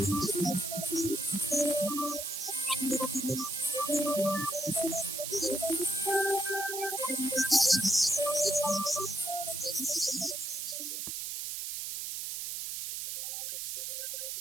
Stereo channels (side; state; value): right; noise; hiss, 4 dB below the sound